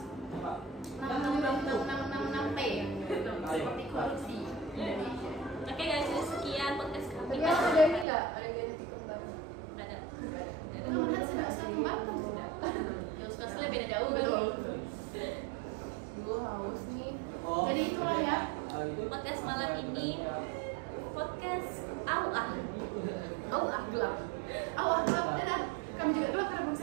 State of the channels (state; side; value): drops out; left; at 8.1 s